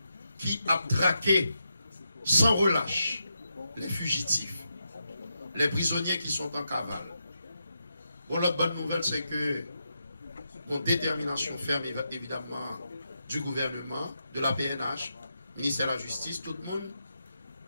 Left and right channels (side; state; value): both; inverted; correlation -0.84